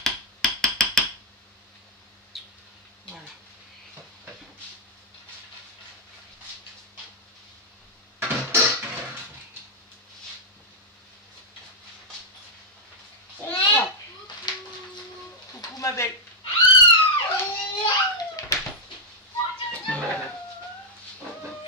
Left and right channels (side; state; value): both; normal; correlation -0.04